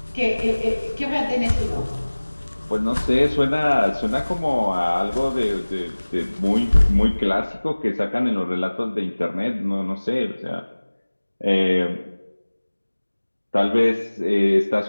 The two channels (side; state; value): both; inverted; correlation -1.00